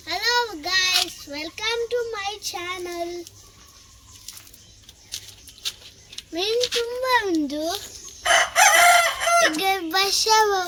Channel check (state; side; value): identical; both; correlation 1.00